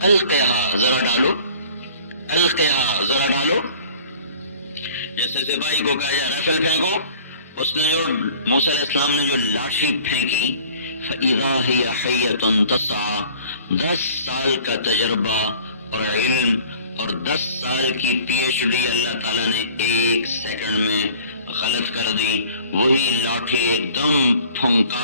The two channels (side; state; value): both; inverted; correlation -0.48